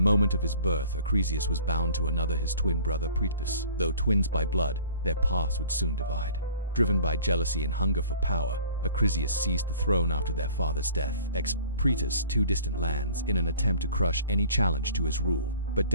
of his birth, Acrisius was bound to another, his twin brother Perseus. Though twins by blood, their paths would soon divide. Driven by jealousy and hunger for power, Acrisius seized the throne after their father's death, Perseus to distant lands in an attempt to crush any challenge to his rule. But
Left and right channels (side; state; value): both; inverted; correlation -0.48